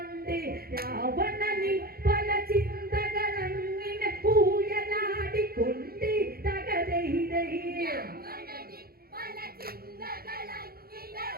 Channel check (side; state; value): left; late; 0.44 ms